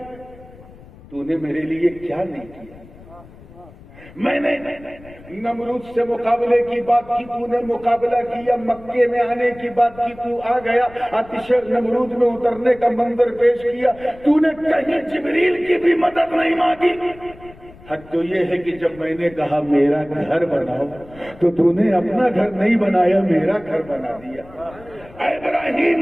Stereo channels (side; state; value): left; noise; rumble, 21 dB below the sound